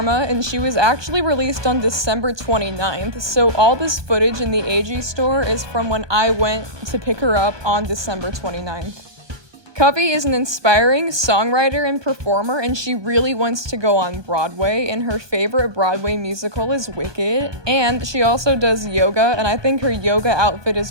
and she was actually released on December 29th, so all this footage in the AG store is from when I went to pick her up on December 29th. Kavi is an inspiring songwriter and performer, and she really wants to go on Broadway, and her favorite Broadway musical is Wicked, and she also does yoga, and I think her yoga outfit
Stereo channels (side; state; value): left; late; 1.2 ms